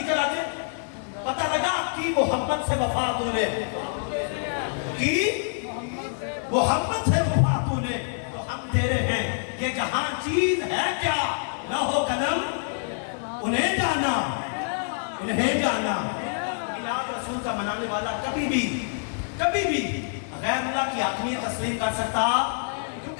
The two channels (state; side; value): silent; right; digital silence